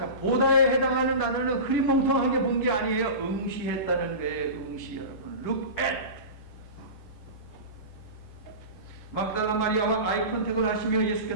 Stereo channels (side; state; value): right; late; 10 ms